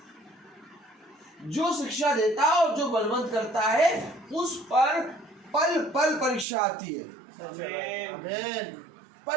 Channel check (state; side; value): drops out; left; at 6.5 s